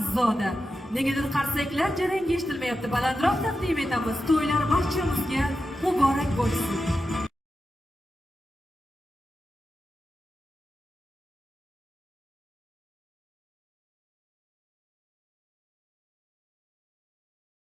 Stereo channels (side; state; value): both; normal; correlation 0.90